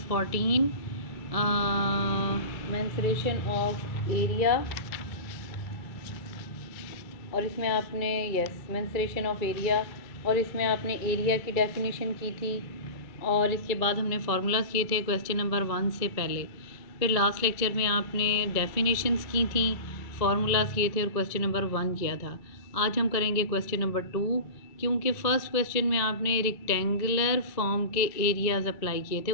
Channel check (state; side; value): late; right; 2.3 ms